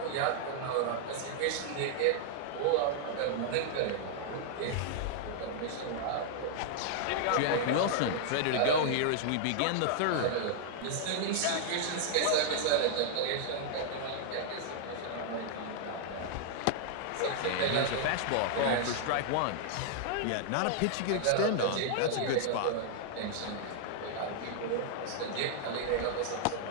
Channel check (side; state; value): both; different; correlation -0.01